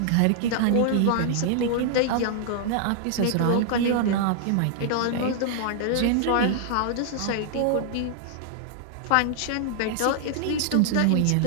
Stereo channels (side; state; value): both; different; correlation -0.01